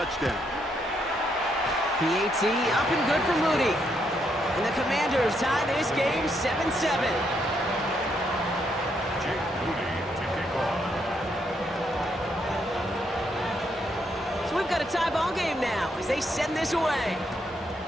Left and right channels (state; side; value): normal; both; correlation 0.76